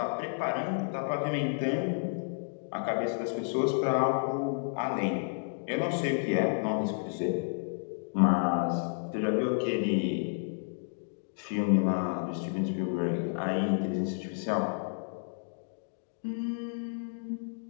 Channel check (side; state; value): right; silent; digital silence